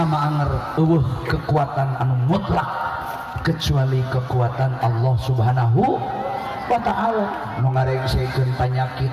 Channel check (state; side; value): identical; both; correlation 1.00